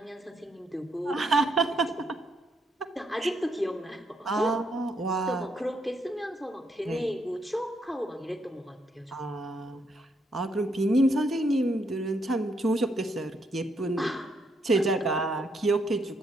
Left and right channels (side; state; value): both; normal; correlation 0.75